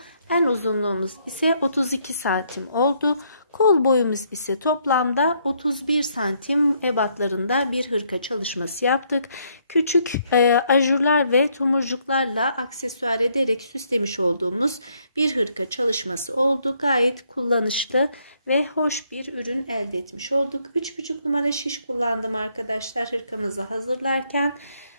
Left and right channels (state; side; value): inverted; both; correlation -0.71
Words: En uzunluğumuz ise 32 santim oldu. Kol boyumuz ise toplamda 31 santim ebatlarında bir hırka çalışması yaptık. Küçük ajurlar ve tomurcuklarla aksesuar ederek süslemiş olduğumuz bir hırka çalışması oldu. Gayet kullanışlı ve hoş bir ürün elde etmiş olduk. 3,5 numara şiş kullandım arkadaşlar hırkamızı hazırlarken.